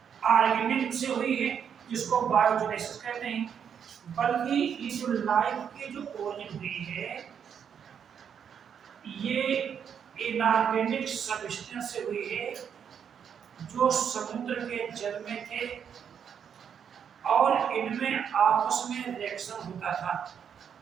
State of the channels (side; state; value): left; quieter; 7.8 dB